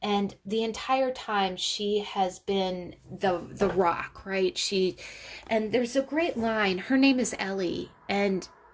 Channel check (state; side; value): identical; both; correlation 1.00